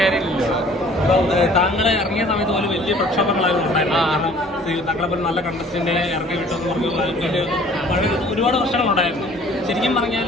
താങ്കളെ ഇറങ്ങിയ സമയത്ത് പോലും വലിയ പ്രക്ഷോഭങ്ങളായിരുന്നു ഉണ്ടായിരുന്നു. കാരണം താങ്കളെ പോലെ നല്ല കണ്ടസ്റ്റന്റ് ഇറങ്ങി വിട്ടെന്ന് പറഞ്ഞ് ഒരുപാട് പ്രശ്നങ്ങളുണ്ടായിരുന്നു. ശരിക്കും പറഞ്ഞാൽ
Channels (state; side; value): normal; both; correlation 0.52